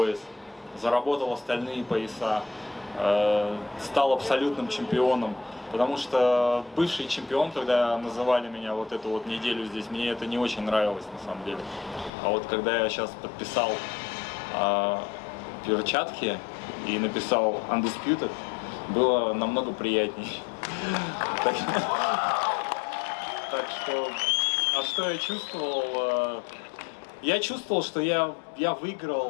заработал остальные пояса, стал абсолютным чемпионом. Потому что бывший чемпион, когда называли меня вот эту вот неделю здесь, мне это не очень нравилось на самом деле. А вот когда я сейчас подписал перчатки и написал Undisputed, было намного приятней. Так что, а что я чувствовал? Я чувствовал, что я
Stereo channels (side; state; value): right; drops out; at 12.1 s